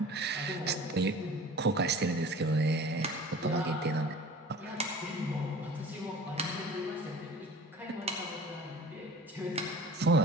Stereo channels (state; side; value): normal; both; correlation 0.42